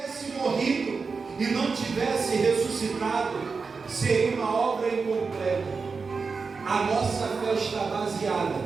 morrido e não tivesse ressuscitado, seria uma obra incompleta. A nossa fé está baseada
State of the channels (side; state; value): left; quieter; 4.8 dB